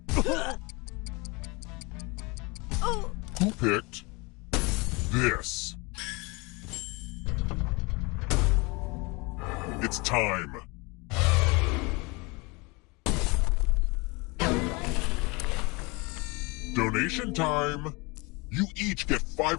Who picked this? It's time. Donation time. You each get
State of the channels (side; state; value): right; quieter; 27.2 dB